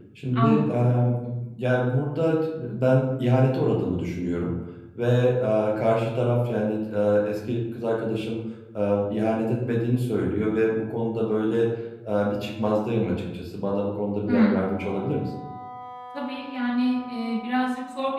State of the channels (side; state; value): both; identical; correlation 1.00